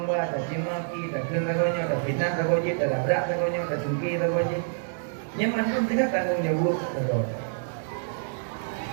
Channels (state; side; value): silent; left; digital silence